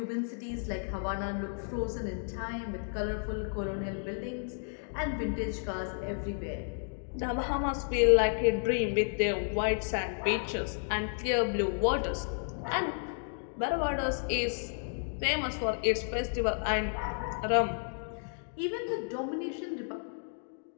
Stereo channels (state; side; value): silent; right; digital silence